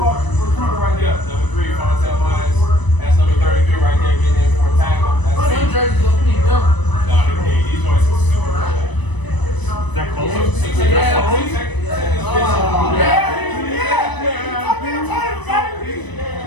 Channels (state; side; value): late; right; 1.0 ms